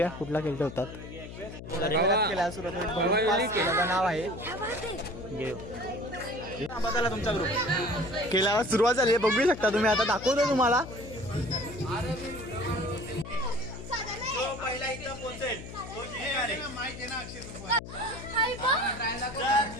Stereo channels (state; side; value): noise; left; hum, 12 dB below the sound